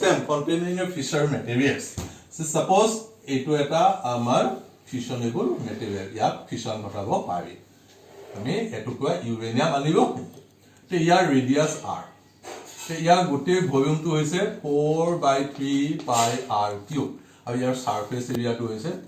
containing a fissure materials so suppose eto eta amar fissionable material ya fission ঘটাব পাৰি আমি এটো কোৱা uranium আনিব তে ইয়াৰ ৰেডিয়াস r ইয়াৰ গোটেই ভলিউমটো হৈছে 4/3 pi r cube আৰু ইয়াৰ সাৰফেস এৰিয়াটো হৈছে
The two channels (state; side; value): identical; both; correlation 1.00